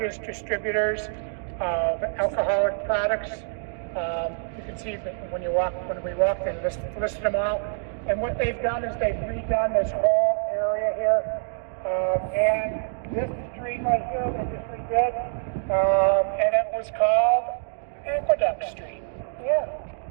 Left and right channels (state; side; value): silent; left; digital silence